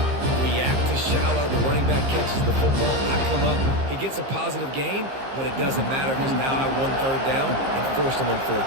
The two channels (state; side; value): late; left; 15 ms